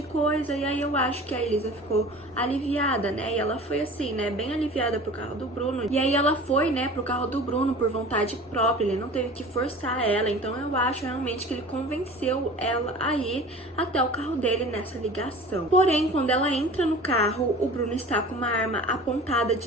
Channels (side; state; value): both; normal; correlation 0.40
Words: coisa. E aí eu acho que a Elisa ficou aliviada, né, e ela foi assim, né, bem aliviada pro carro do Bruno. E aí ela foi, né, pro carro do Bruno por vontade própria, ele não teve que forçar ela. Então eu acho realmente que ele convenceu ela a ir até o carro dele nessa ligação. Porém, quando ela entra no carro, o Bruno está com uma arma apontada